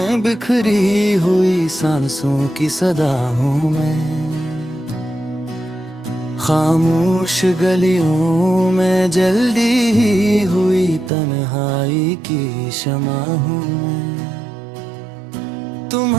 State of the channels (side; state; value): left; drops out; at 11.1 s